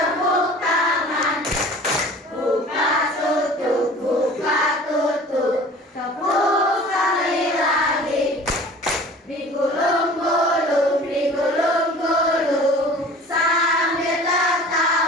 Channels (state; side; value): normal; both; correlation 0.44